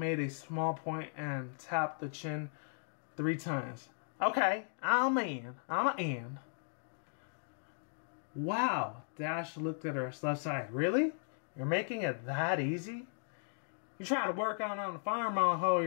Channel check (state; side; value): silent; right; digital silence